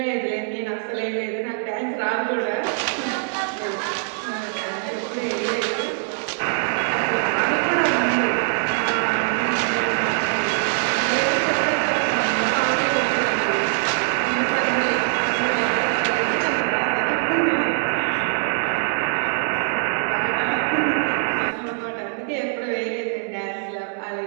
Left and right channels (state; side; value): silent; left; 64 dB below the other